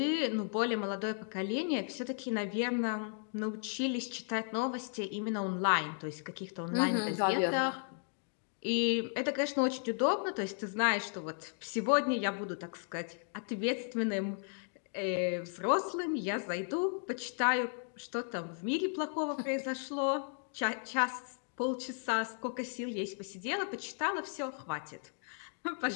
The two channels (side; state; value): right; silent; 54 dB below the other